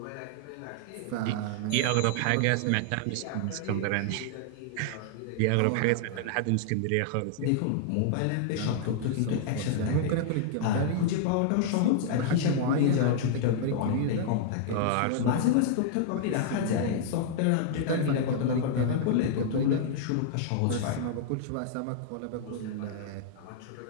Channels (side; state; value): both; different; correlation -0.01